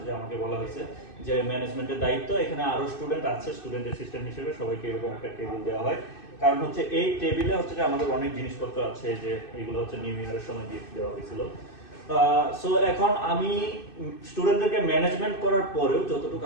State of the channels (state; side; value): late; right; 2.6 ms